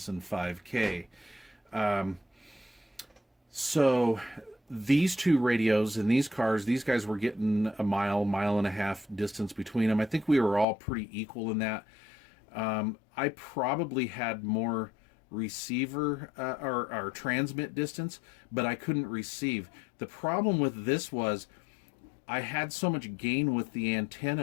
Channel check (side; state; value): right; drops out; at 10.7 s